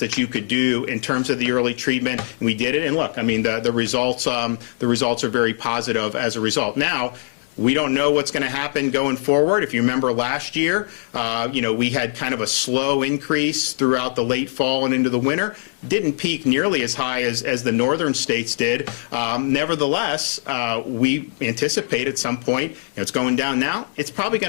that you could do in terms of the early treatment. And we did it. And look, I mean, the results are very positive as a result. Now, we don't know what's going to happen going forward. If you remember last year, we had kind of a slow increase throughout the late fall and into the winter. Didn't peak nearly as high as the northern states did. Nevertheless, we anticipate at some point, it's going down now, it's probably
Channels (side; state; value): right; silent; 65 dB below the other